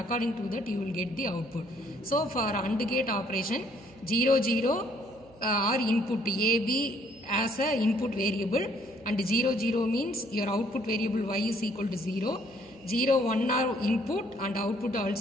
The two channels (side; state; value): right; noise; hum, 25 dB below the sound